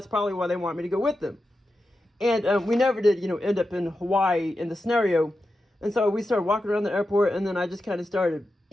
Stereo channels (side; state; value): both; normal; correlation 0.90